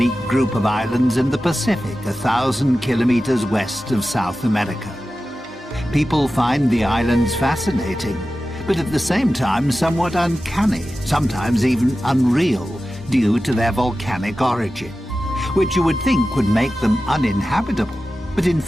group of islands in the Pacific, 1,000 kilometers west of South America. People find the islands fascinating, but at the same time somewhat uncanny, sometimes even unreal, due to their volcanic origin, which you would think would make them uninhabitable. But in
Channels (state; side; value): normal; both; correlation 0.94